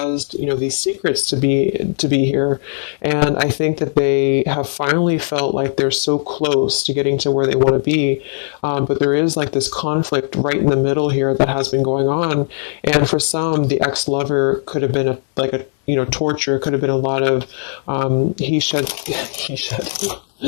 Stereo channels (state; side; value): silent; right; digital silence